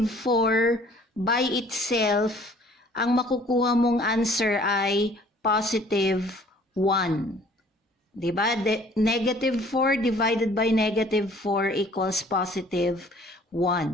4 by itself, ang makukuha mong answer ay positive 1. Diba? Negative 4 divided by negative 4 equals positive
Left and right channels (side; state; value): both; normal; correlation 0.55